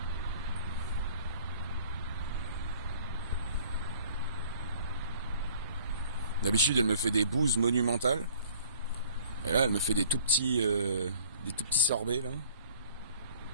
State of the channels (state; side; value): inverted; both; correlation -0.53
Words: D'habitude, elle me fait des bouses monumentales. Et là, elle me fait des tout petits sorbets, là.